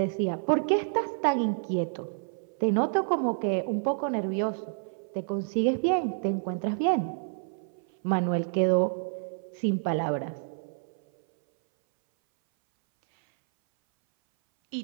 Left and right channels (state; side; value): silent; left; 59 dB below the other